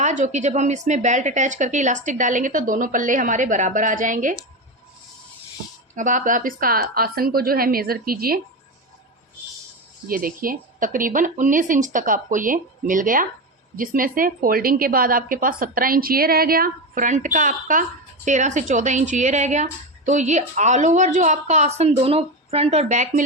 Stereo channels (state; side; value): normal; both; correlation 0.17